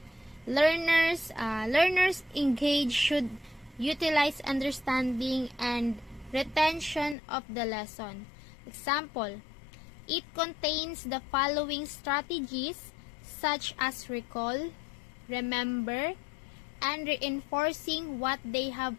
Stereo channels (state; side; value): drops out; right; at 7.2 s